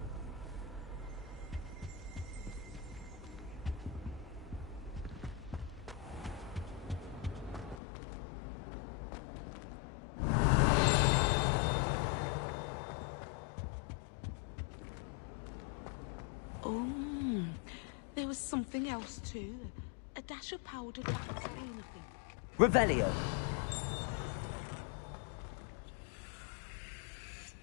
There was something else too. A dash of powdered wax green, I think. Revelio.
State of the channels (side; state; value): right; drops out; at 7.8 s